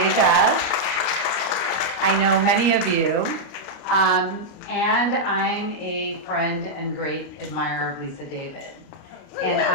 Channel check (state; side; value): late; right; 29 ms